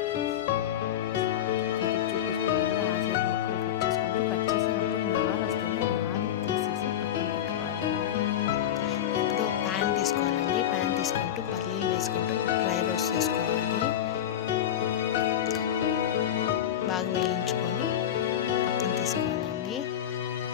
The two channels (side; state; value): right; quieter; 10.6 dB